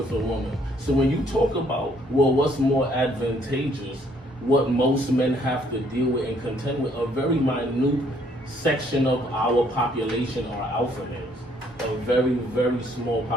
a woman. So when you talk about, well, what's more advantageous, what most men have to deal with and contend with, a very minute section of our population are alpha males. A very, very small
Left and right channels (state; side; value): normal; both; correlation 0.65